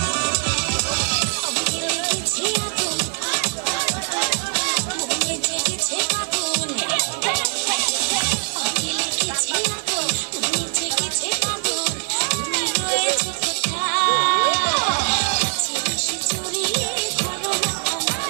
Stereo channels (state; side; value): silent; left; 64 dB below the other